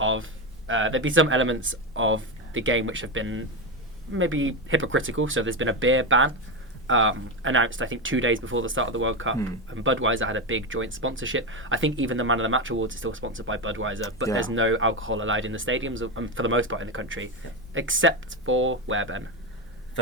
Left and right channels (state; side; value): normal; both; correlation 0.13